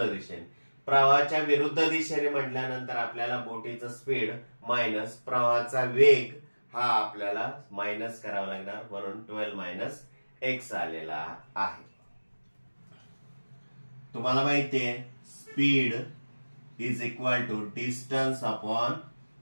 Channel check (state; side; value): inverted; both; correlation -1.00